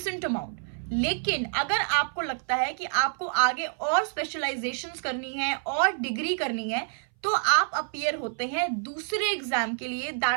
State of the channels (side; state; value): left; silent; 58 dB below the other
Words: amount. लेकिन अगर आपको लगता है कि आपको आगे और स्पेशलाइजेशंस करनी है और डिग्री करनी है, तो आप अपीयर होते हैं दूसरे एग्जाम के लिए,